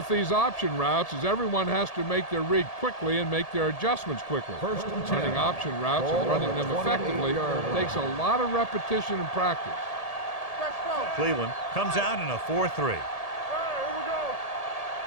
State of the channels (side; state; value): right; late; 1.8 ms